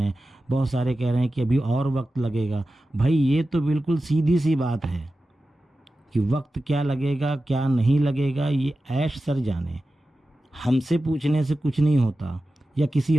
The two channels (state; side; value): normal; both; correlation 0.94